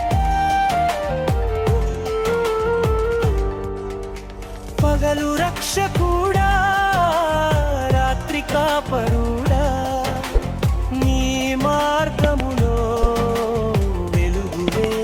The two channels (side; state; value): both; identical; correlation 1.00